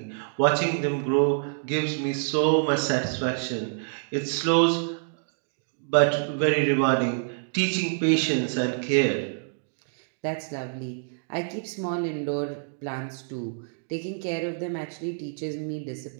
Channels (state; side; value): silent; left; digital silence